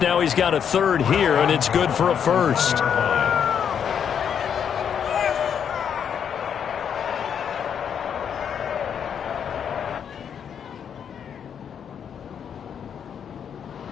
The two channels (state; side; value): quieter; right; 8.0 dB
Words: he's got a 3rd here, and it's good for a 1st.